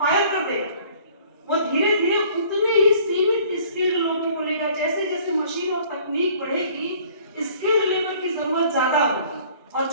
कर देगा। वो धीरे धीरे उतने ही सीमित स्किल्ड लोगों को लेगा। जैसे जैसे मशीन और तकनीक बढ़ेगी, स्किल्ड लेबर की जरूरत ज्यादा होगी और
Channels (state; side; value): inverted; both; correlation -0.54